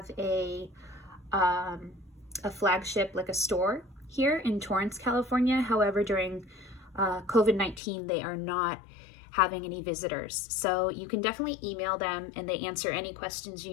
a flagship, like a store here in Torrance, California. However, during COVID-19, they are not having any visitors. So you can definitely email them and they answer any questions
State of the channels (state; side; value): drops out; right; at 7.8 s